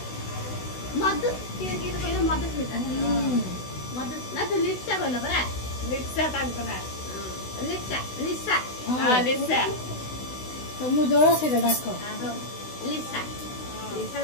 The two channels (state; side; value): late; right; 16 ms